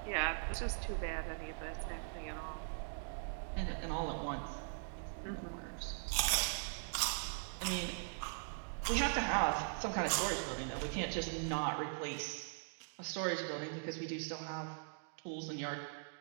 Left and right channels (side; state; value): left; silent; digital silence